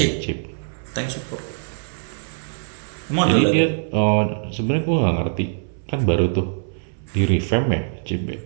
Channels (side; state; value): left; silent; 62 dB below the other